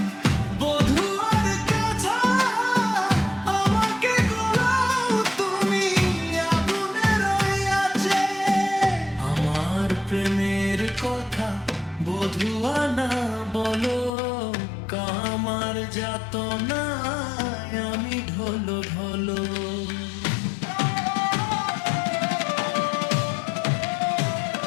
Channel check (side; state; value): right; drops out; at 14.1 s